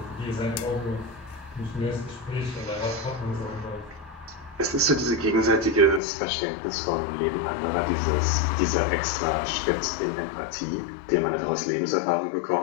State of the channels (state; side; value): drops out; right; at 6.0 s